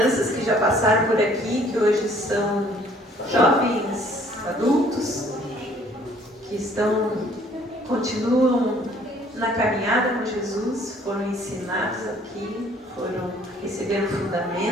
que já passaram por aqui, que hoje são jovens adultos, que continuam na caminhada com Jesus, foram ensinados aqui, receberam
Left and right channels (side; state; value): both; normal; correlation 0.58